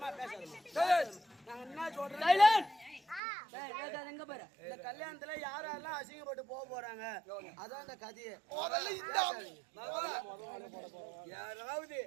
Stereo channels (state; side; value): drops out; left; at 3.2 s